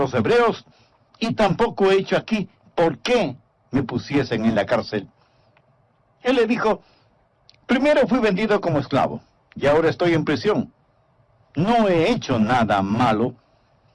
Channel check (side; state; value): both; identical; correlation 1.00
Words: hebreos, y tampoco he hecho aquí por qué me pusiesen en la cárcel. Él le dijo, primero fui vendido como esclavo, y ahora estoy en prisión. No he hecho nada malo.